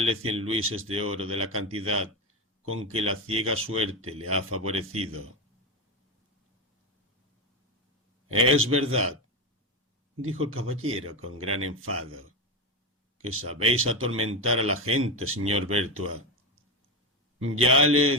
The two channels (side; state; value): both; normal; correlation 0.16